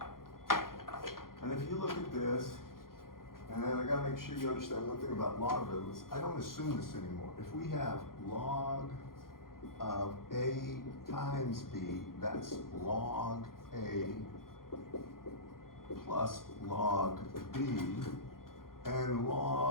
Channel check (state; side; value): late; right; 0.91 ms